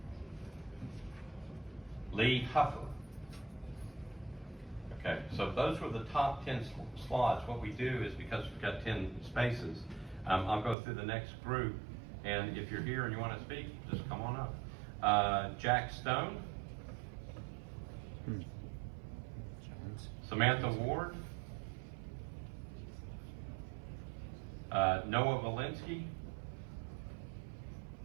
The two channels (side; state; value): left; drops out; at 10.8 s